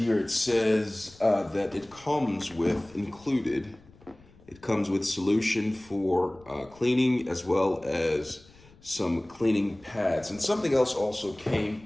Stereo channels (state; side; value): noise; left; rumble, 26 dB below the sound